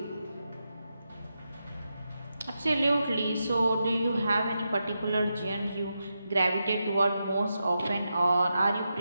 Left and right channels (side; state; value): both; inverted; correlation -0.87